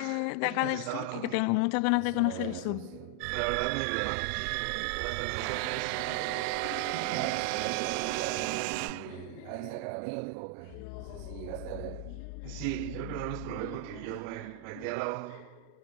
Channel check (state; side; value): different; both; correlation 0.00